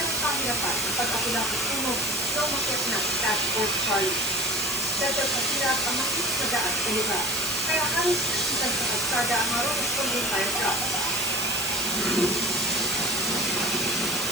pahirapan ang pag-akula ng sunog na umakyat na Task Force Charlie. Dahil pahirap ang makinis na daan sa lugar. Kaya halos nasitan sa kalsada ang mga responding fire truck.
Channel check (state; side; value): noise; right; hiss, 5 dB below the sound